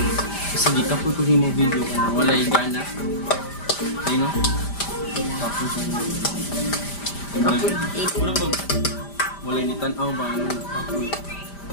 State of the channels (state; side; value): late; right; 5.0 ms